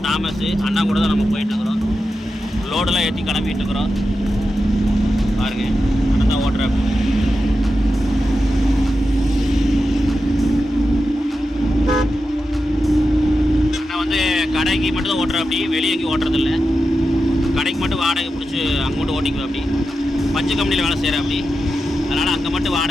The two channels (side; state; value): both; normal; correlation 0.90